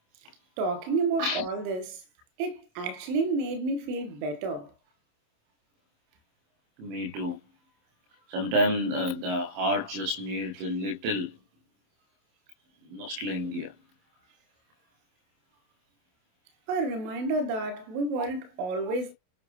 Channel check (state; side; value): late; left; 27 ms